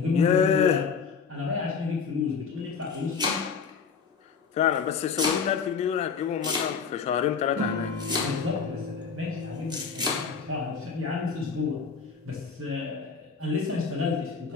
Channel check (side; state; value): right; quieter; 5.8 dB